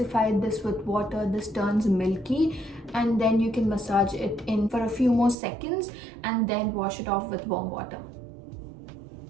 this with water, this turns milky, and then you can massage it in for a few more seconds and then wash it off with warm water.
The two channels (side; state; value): left; drops out; at 5.4 s